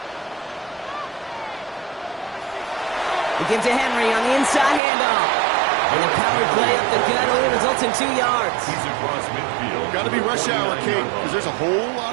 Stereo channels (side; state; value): left; drops out; at 4.8 s